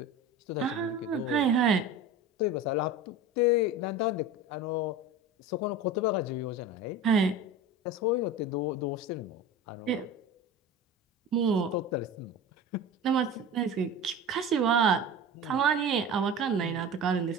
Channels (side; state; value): both; normal; correlation 0.32